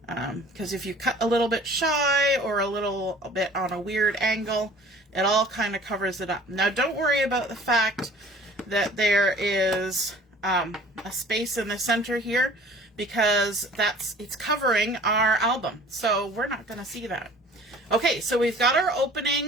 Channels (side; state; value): both; normal; correlation 0.48